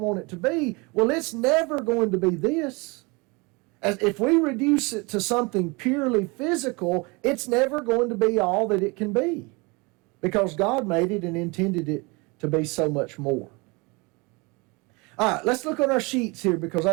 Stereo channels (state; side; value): quieter; left; 27.5 dB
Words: it to be, well, it's never going to be this. As if we reduce it to something purely physical, it's never going to be all that it can be, because God made it and intended it to be so much more. All right, let's look on our sheets here, because